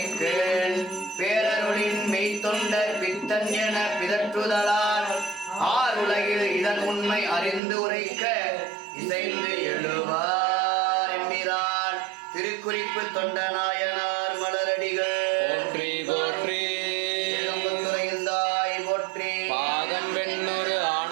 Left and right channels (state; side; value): drops out; left; at 7.6 s